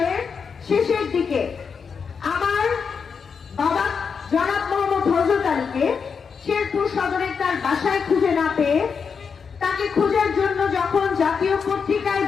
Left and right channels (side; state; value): right; quieter; 6.0 dB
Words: শেষের দিকে আমার বাবা জনাব মোহাম্মদ হযরত আলীকে শেরপুর সদরের তার বাসায় খুঁজে না পেয়ে তাকে খোঁজার জন্য যখন জাতীয় পত্রিকায়